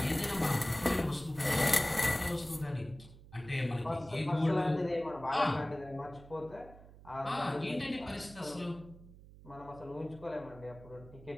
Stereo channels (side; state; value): right; noise; hum, 19 dB below the sound